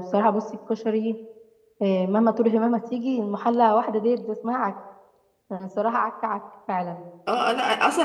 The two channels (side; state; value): both; identical; correlation 1.00